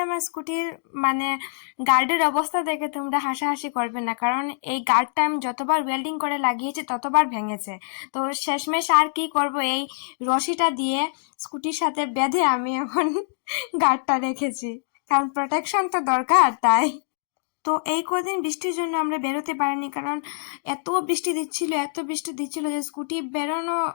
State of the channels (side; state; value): right; silent; digital silence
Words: আমার স্কুটির মানে গার্ডের অবস্থা দেখে তোমরা হাসাহাসি করবে না, কারণ এই গার্ডটা আমি যতবার ওয়েল্ডিং করে লাগিয়েছি ততবার ভেঙেছে। তো শেষমেশ আর কি করব, এই রশিটা দিয়ে স্কুটির সাথে বেঁধে আমি এখন গার্ডটা রেখেছি, কারণ প্রোটেকশন তো দরকার তাই। তো এই কদিন বৃষ্টির জন্য আমরা বেরোতে পারিনি, কারণ এত বৃষ্টি দিচ্ছিল যে স্কুটি বেরোনো